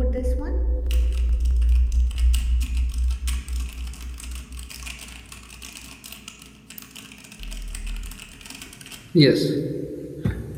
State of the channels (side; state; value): both; identical; correlation 1.00